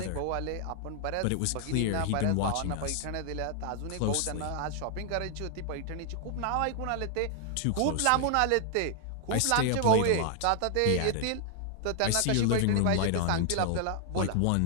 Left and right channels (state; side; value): different; both; correlation 0.00